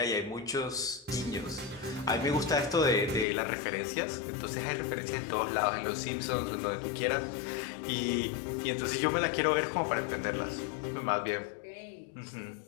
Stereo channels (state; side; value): drops out; right; at 3.2 s